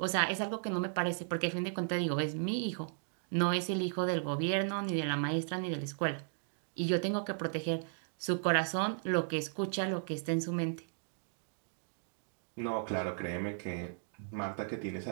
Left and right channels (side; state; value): left; silent; digital silence